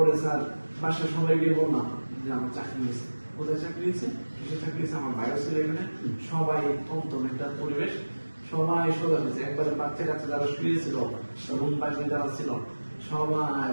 স্যার বাসার সবাই গিয়ে বললাম যে আমার চাকরি হয়েছে। কোথায় চাকরি দিচ্ছে, কিসের চাকরি দিচ্ছে, আমার ভাইও ছিল এখানে, সবাই থমথম একটা পরিবেশ, সবাই সোজা হয়েছে, একবারে বাচ্চা কাচ্চা যারা শুয়েছিল, রুম বাইরে যারা ছিল, সবাই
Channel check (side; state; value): both; inverted; correlation -1.00